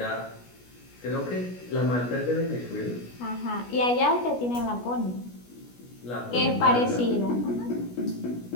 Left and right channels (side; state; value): right; late; 16 ms